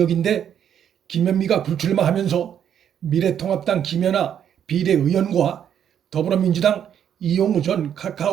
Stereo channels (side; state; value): left; quieter; 9.2 dB